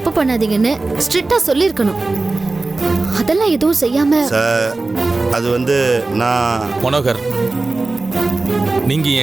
பண்ணாதீங்கன்னு ஸ்ட்ரிக்டா சொல்லியிருக்கணும். அதெல்லாம் எதுவும் செய்யாம சார் அது வந்து நான் மனோகர், நீங்க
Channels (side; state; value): left; quieter; 3.4 dB